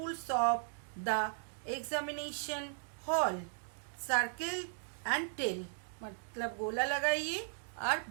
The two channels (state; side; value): silent; left; digital silence